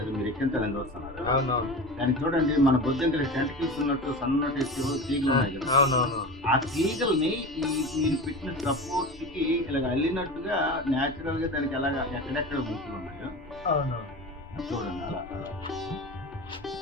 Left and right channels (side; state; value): both; normal; correlation 0.30